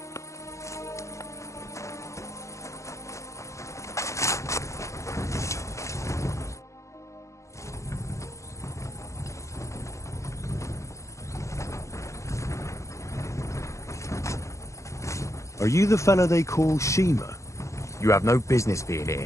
Are you the fella they call Shima? You have no business being here.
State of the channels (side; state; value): right; late; 0.15 ms